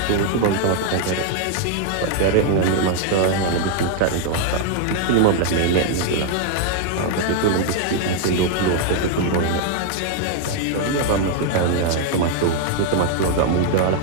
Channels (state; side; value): different; both; correlation 0.00